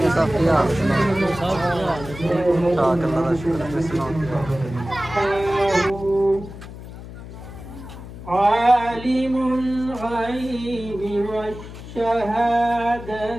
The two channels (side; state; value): left; noise; hum, 13 dB below the sound